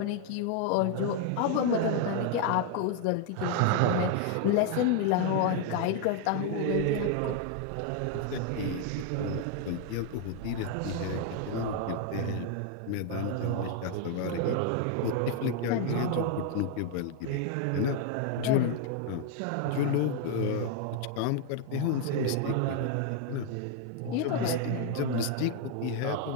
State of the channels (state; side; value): different; both; correlation 0.00